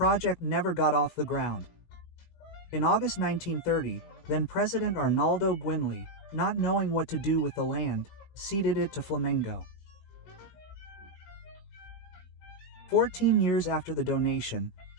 never got off the ground. In August 1930, then President Arnaldo Guinle, not knowing what to do with the land, ceded it to Flamengo. 14 years after the donation,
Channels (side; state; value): right; late; 19 ms